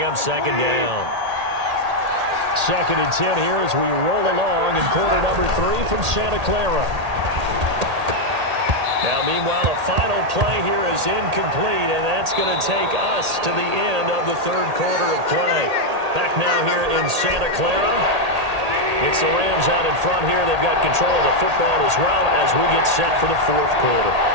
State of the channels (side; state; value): left; late; 1.8 ms